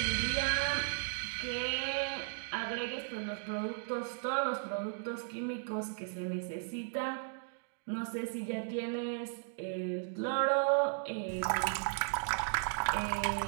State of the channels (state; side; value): silent; left; digital silence